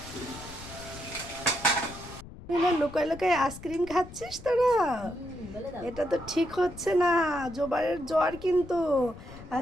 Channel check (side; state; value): left; noise; rumble, 16 dB below the sound